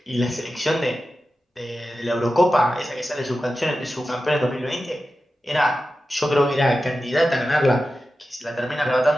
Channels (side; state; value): both; normal; correlation 0.93